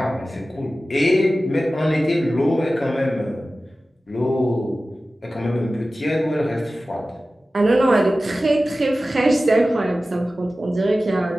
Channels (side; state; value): both; normal; correlation 0.95